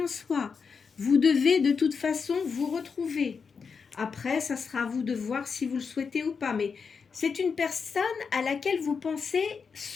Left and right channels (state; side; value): quieter; right; 5.6 dB